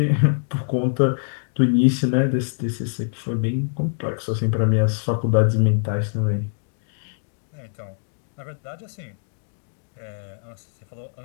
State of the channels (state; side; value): silent; right; digital silence